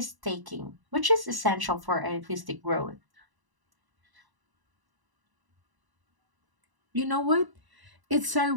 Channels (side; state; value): left; late; 1.0 ms